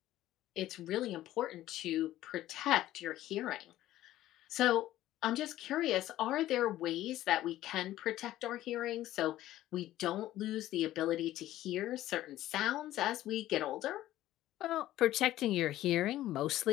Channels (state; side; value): quieter; right; 14.3 dB